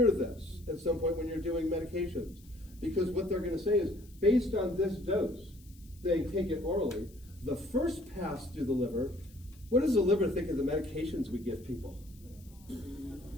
this at some point when you're doing medications, because what they're going to say is, based on this dose, they take it orally, the first pass through the liver, what does the liver think of the medications we give people?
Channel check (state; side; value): noise; left; hiss, 26 dB below the sound